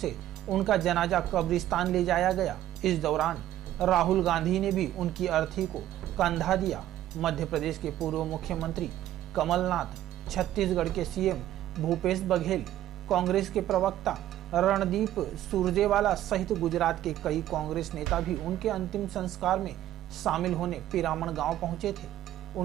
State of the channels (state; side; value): quieter; left; 13.0 dB